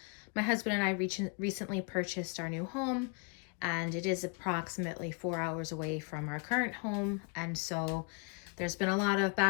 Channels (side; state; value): right; quieter; 35.6 dB